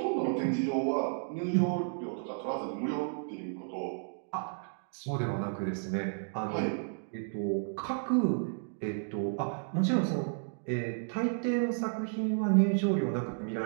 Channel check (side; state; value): left; silent; digital silence